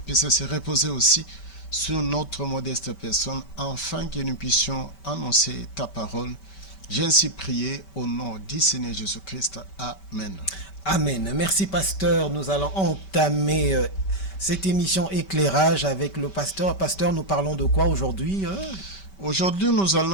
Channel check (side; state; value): right; late; 5.2 ms